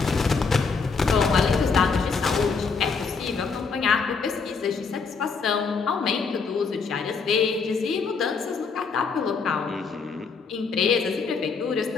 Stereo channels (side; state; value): right; quieter; 5.0 dB